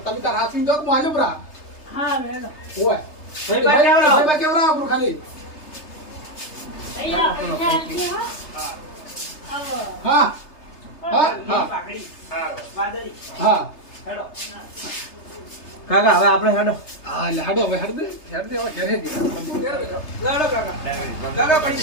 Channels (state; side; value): late; right; 3.3 ms